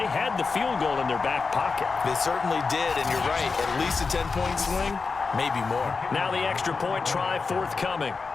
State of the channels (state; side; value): quieter; right; 4.6 dB